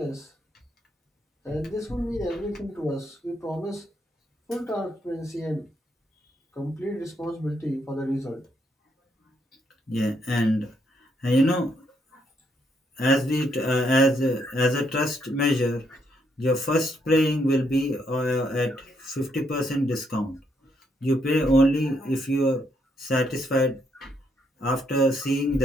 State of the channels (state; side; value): normal; both; correlation 0.75